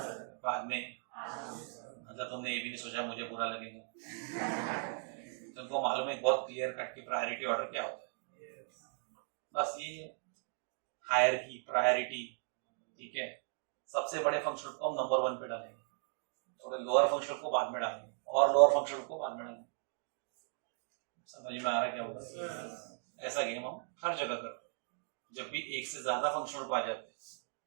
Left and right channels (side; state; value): left; silent; 53 dB below the other